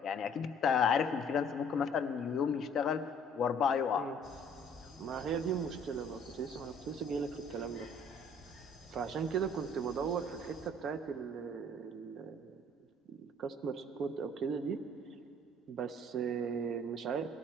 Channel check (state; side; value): normal; both; correlation 0.56